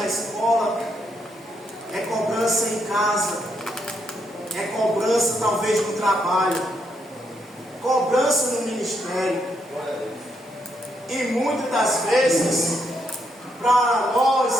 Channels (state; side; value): normal; both; correlation 0.77